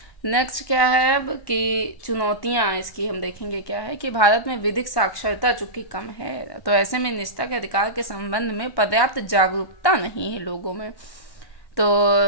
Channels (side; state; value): right; late; 1.1 ms